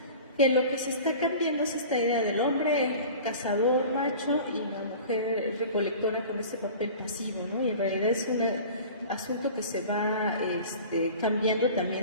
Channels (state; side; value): inverted; both; correlation -0.40